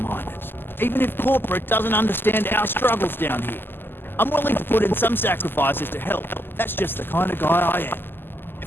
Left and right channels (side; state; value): right; late; 0.099 ms